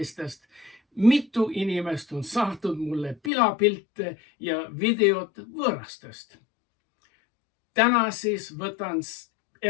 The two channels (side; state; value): right; drops out; at 3.3 s